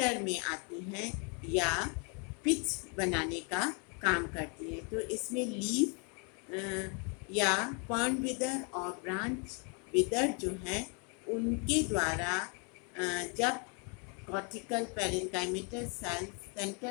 में आती हैं या पिच बनाने का काम करती हैं। तो इसमें लीफ या पॉन्ड विदर और ब्रांच विदर जो है उनके द्वारा जब कॉर्टिकल पैरेन्काइमेटल सेल्स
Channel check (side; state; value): right; quieter; 36.3 dB